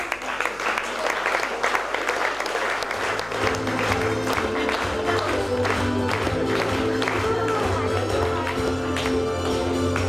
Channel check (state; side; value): noise; left; hum, 24 dB below the sound